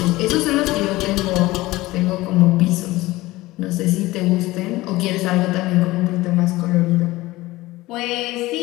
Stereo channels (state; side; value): quieter; right; 18.9 dB